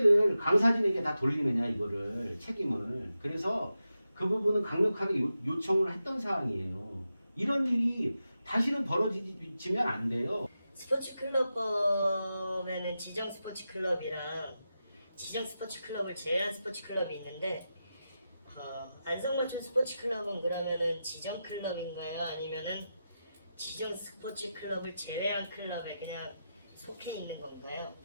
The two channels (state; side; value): inverted; both; correlation -0.90